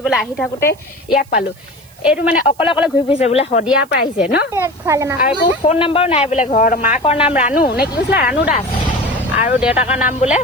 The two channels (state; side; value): noise; right; hiss, 28 dB below the sound